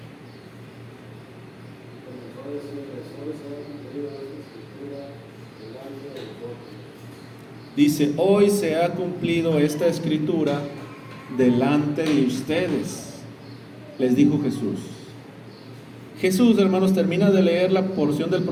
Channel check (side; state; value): both; identical; correlation 1.00